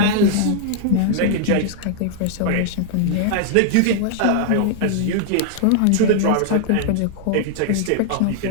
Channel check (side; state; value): both; different; correlation -0.01